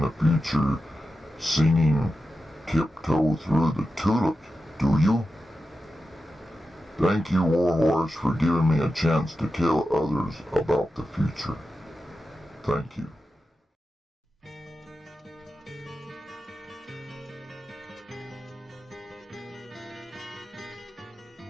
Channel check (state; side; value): normal; both; correlation 0.91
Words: future singing Tiptoe Through the Tulips, do you? Thank you, Warhorse, for giving me a chance to tell others about the future. Thank you.